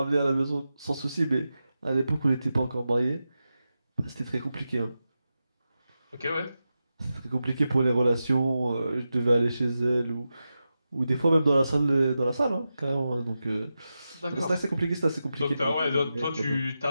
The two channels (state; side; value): inverted; both; correlation -0.91